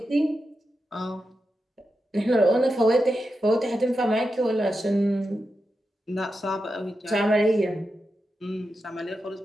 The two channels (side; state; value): both; normal; correlation 0.89